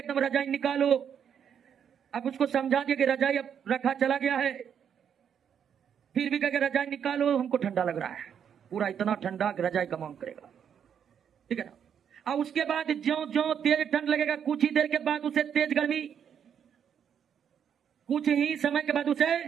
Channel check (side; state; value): left; quieter; 8.2 dB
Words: रजाई निकालो। अब उसको समझा दिया कि रजाई अब रखा चला गया है, फिर भी कहेगा रजाई निकालो, हमको ठंडा लग रहा है, पूरा इतना ठंडा कि रजाई का मांग करेगा, ठीक है ना। और उसके बाद ज्यों ज्यों तेज ठंड लगेगा, कुछ ही देर के बाद उसे तेज गर्मी, कुछ ही समय के बाद उसे